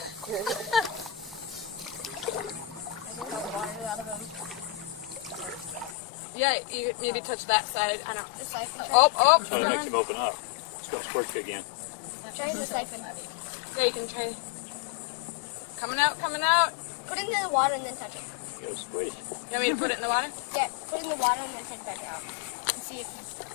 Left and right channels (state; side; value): drops out; right; at 6.0 s